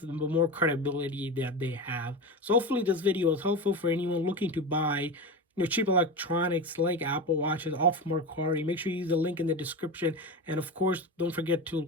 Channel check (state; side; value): normal; both; correlation 0.23